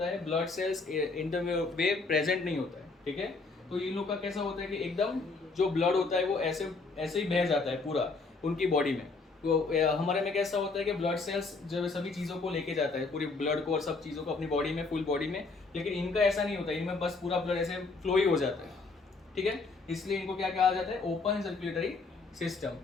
है, blood cells in the way present नहीं होता है, ठीक है। तो इन लोग का कैसा होता है कि एकदम जो ब्लड होता है वो ऐसे ऐसे ही बह जाता है पूरा उनकी बॉडी में। तो हमारे में कैसा होता है कि ब्लड सेल्स जो सभी चीज़ों को लेके जाता है, पूरी ब्लड को और सब चीज़ों को अपनी बॉडी में, फुल बॉडी में। लेकिन इनका ऐसा नहीं होता, इनमें बस पूरा ब्लड ऐसे फ्लो ही हो जाता है, ठीक है। इसलिए इनको क्या कहा जाता है, ओपन सर्कुलेटरी सिस्टम।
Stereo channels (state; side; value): quieter; right; 4.0 dB